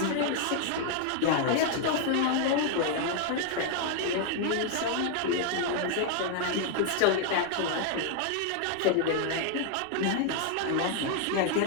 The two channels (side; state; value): both; different; correlation 0.00